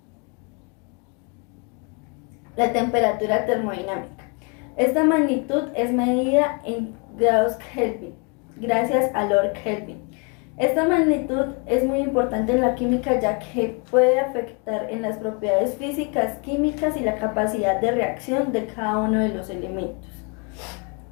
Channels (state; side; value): quieter; right; 34.8 dB